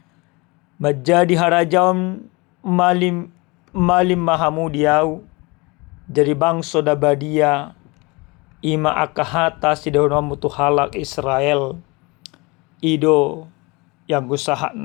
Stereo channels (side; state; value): right; quieter; 26.0 dB